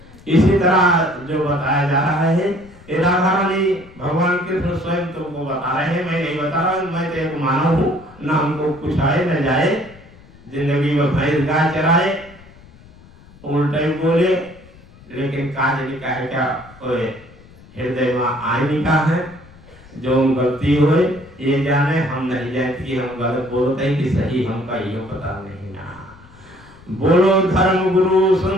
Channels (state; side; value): noise; left; rumble, 23 dB below the sound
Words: इसी तरह जो बताया जा रहा है, ये राधा रानी भगवान कृष्ण स्वयं तुमको बता रहे हैं, मैं नहीं बता रहा हूँ। मैं तो एक मानव हूँ, ना हमको कुछ आए न जाए, जिंदगी में भैंस गाय चराए, उल्टा ही बोले, लेकिन काज लिखा है क्या हृदय में आईनी का है। जो गलती हुए ये जाने, हम नहीं जानते कि हम गलत बोलते हैं कि सही, हमका ये पता नहीं ना। बोलो धर्म गुरु